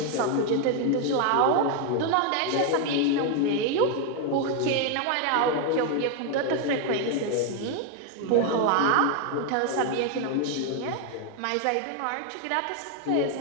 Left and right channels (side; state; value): both; different; correlation 0.01